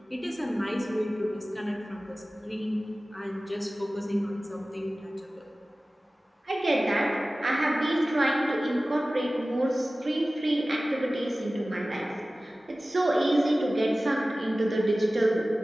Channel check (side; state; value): both; normal; correlation 0.97